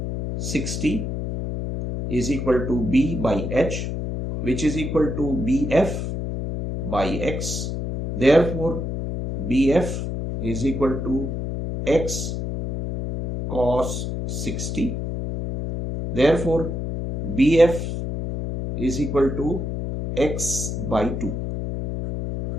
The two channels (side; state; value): left; noise; hum, 4 dB below the sound